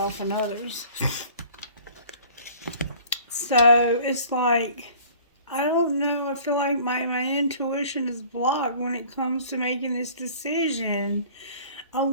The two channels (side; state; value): both; inverted; correlation -0.50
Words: and others. So it's like I don't know. I feel like my intuition is blocked when it comes to making this decision. I